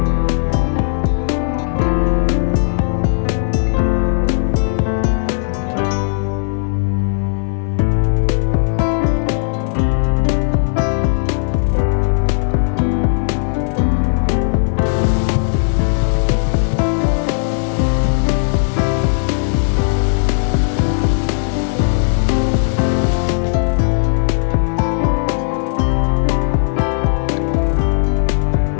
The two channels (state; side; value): silent; right; digital silence